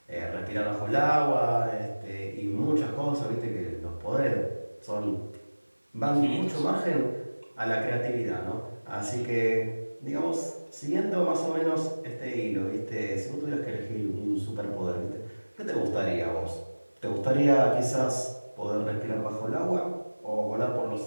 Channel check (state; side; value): inverted; both; correlation -1.00